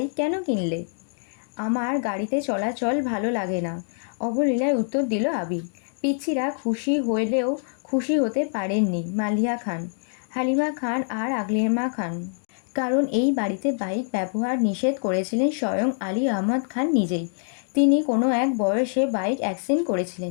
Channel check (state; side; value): silent; right; digital silence